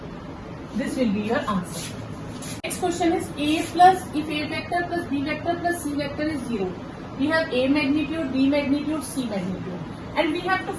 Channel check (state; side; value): identical; both; correlation 1.00